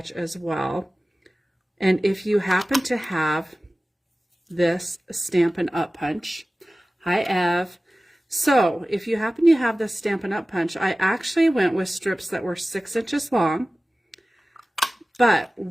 as well, and if you happen to have this Stampin' Up punch, hi Ev. So if you happen to have this Stampin' Up punch, I actually went with strips that were 6 inches long, but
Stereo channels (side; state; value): both; normal; correlation 0.97